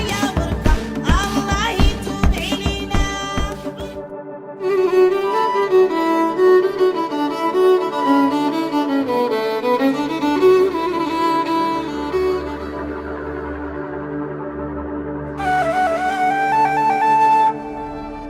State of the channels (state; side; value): identical; both; correlation 1.00